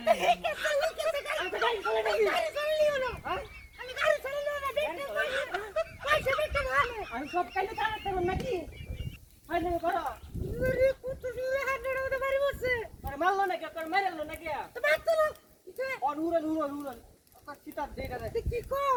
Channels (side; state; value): both; identical; correlation 1.00